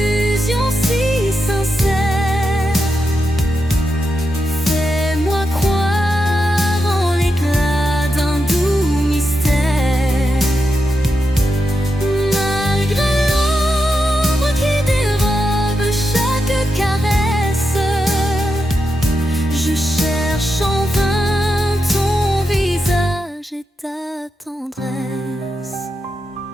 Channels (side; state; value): both; normal; correlation 0.86